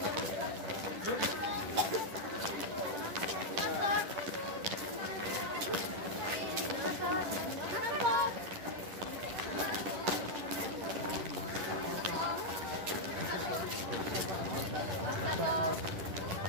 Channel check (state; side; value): late; left; 10 ms